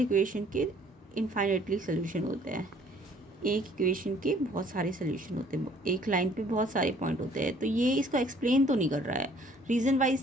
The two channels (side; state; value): both; normal; correlation 0.58